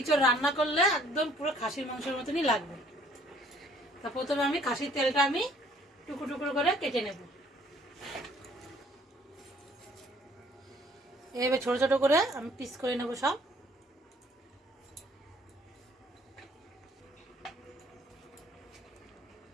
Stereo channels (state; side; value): normal; both; correlation 0.59